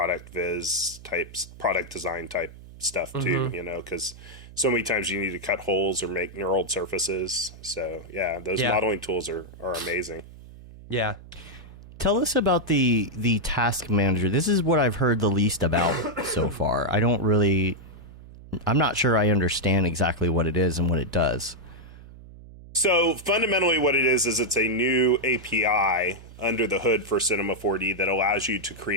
viz types, product design type stuff too, you know, because so many times you need to cut holes or make knurled surfaces. So yeah, those modeling tools are amazing. Yeah. Tell us about the task manager. This is what I've heard the least about so far. I'm not sure I understand exactly what it is and what it does. So fundamentally what it is it's a new API under the hood for Cinema 4D that allows you to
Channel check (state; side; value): noise; right; hum, 18 dB below the sound